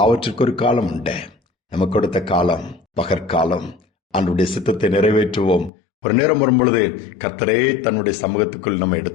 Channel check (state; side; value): drops out; right; at 5.7 s